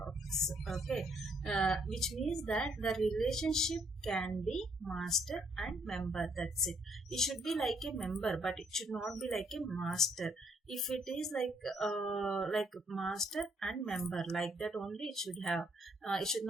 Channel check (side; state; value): both; normal; correlation 0.69